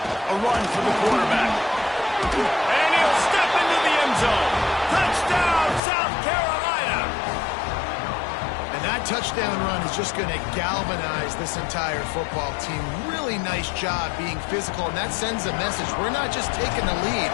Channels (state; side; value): drops out; right; at 5.8 s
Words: A run for the quarterback. And he'll step into the end zone. Touchdown, South Carolina. And that touchdown run is just going to galvanize this entire football team. Really nice job being physical, and that sends a message. We're not just taking the lead.